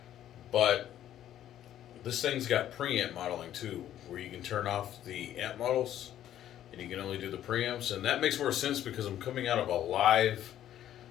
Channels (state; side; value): quieter; right; 11.6 dB